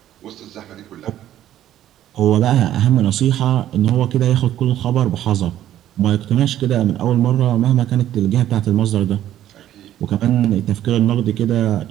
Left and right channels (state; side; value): quieter; left; 12.2 dB